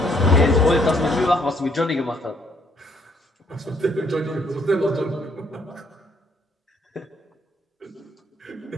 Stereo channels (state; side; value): normal; both; correlation 0.67